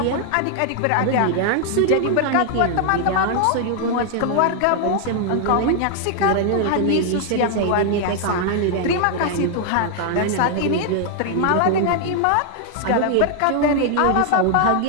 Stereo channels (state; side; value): different; both; correlation 0.00